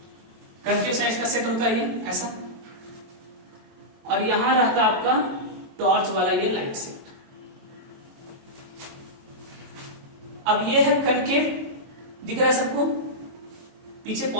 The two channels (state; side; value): late; left; 22 ms